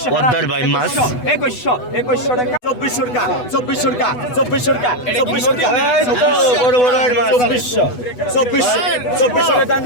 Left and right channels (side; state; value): right; late; 8.1 ms